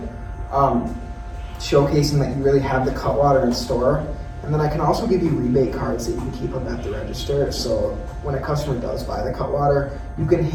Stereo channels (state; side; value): identical; both; correlation 1.00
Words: showcasing that you really have the Cutwater in store. And then I can also give you rebate cards that you can keep them at the register. So when a customer does buy the Cutwater, you can